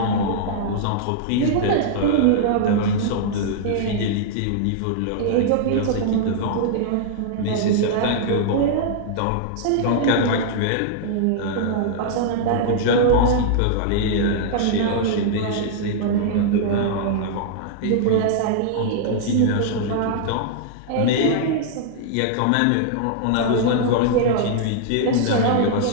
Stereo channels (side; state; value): both; different; correlation -0.01